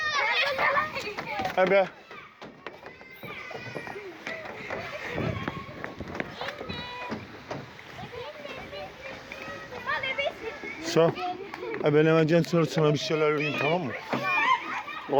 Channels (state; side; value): identical; both; correlation 1.00